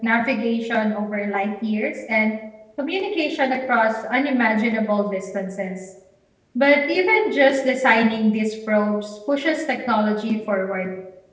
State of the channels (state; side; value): identical; both; correlation 1.00